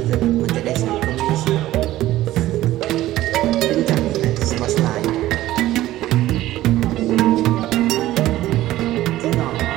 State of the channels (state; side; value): quieter; left; 15.2 dB